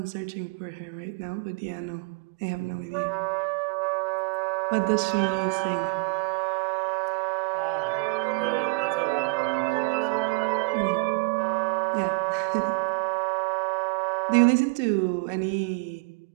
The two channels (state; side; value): quieter; left; 28.5 dB